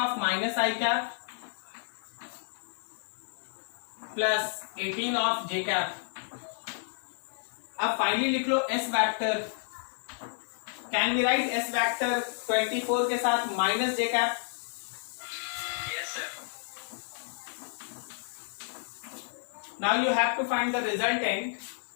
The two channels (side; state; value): right; silent; digital silence